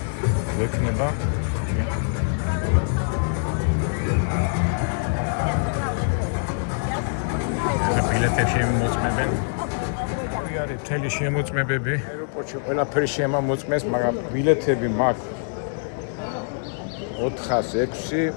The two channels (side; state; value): right; silent; 62 dB below the other